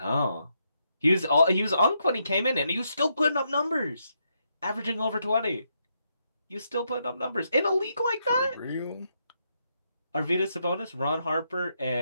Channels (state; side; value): inverted; both; correlation -0.79